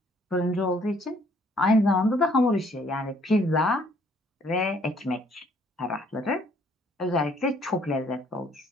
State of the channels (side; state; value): both; normal; correlation 0.63